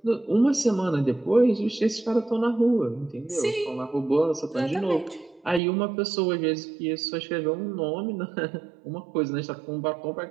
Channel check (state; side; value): drops out; left; at 5.6 s